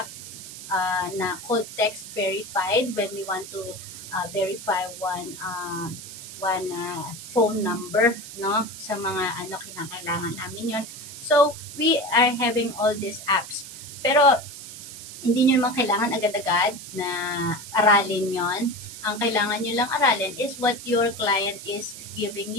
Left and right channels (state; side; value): noise; right; hiss, 12 dB below the sound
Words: na called text verified when we want to verify one phone number, no, sa mga kinakailangan namin yon. So we are having all these apps, pero hindi nyo naman kailangan agad-agad na aralin yon. Ang kailangan nyo lang aralin is what your client is giving